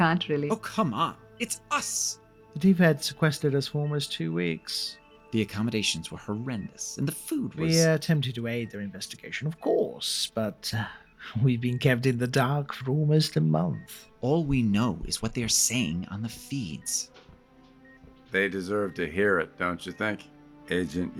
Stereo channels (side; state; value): both; identical; correlation 1.00